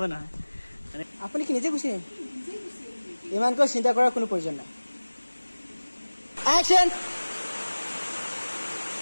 নহয় আপুনি কি নিজে গুচি ইমানকৈ চিন্তা কৰাৰ কোনো প্ৰয়োজন নাই action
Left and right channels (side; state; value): both; inverted; correlation -1.00